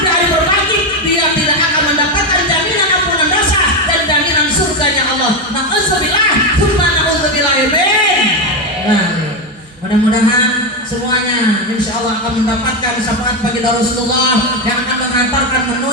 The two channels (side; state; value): both; normal; correlation 0.10